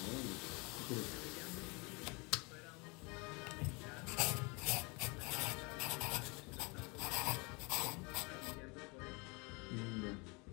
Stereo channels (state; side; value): quieter; right; 29.3 dB